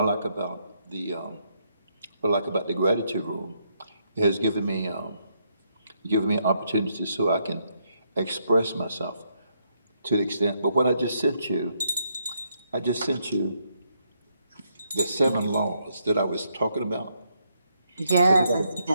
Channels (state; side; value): inverted; both; correlation -0.76